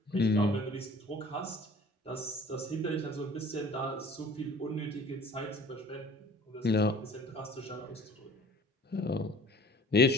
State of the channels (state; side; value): normal; both; correlation 0.48